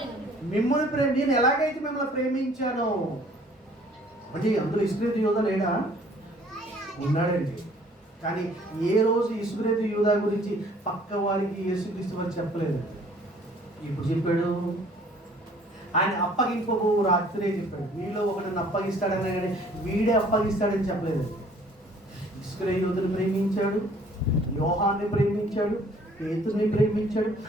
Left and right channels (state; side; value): normal; both; correlation 0.56